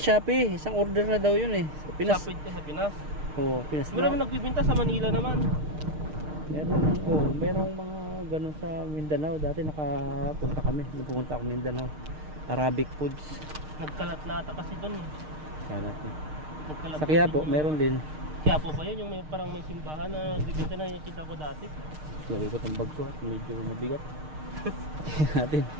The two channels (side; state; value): left; late; 6.5 ms